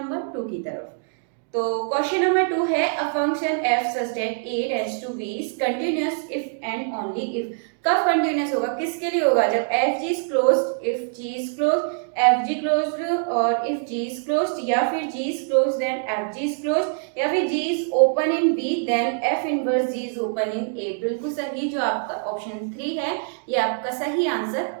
नंबर 2 की तरफ। तो क्वेश्चन नंबर 2 है, a function f such that a tends to b is continuous if and only if। कब कंटिन्यूस होगा, किसके लिए होगा, जब f g is closed, if g is closed, f g closed और if g is closed, या फिर g is closed then f g is closed, या फिर g is open in b then f inverse g is open in a। बिल्कुल सही, जो आपका option 3 है ये आपका सही आंसर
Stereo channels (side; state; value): left; silent; digital silence